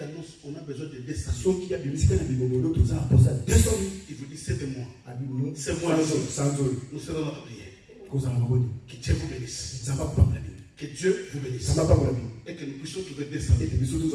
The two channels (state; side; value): identical; both; correlation 1.00